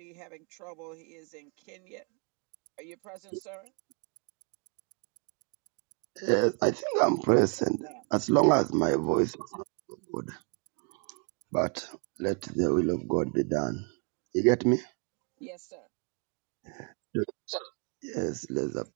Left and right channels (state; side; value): quieter; left; 35.7 dB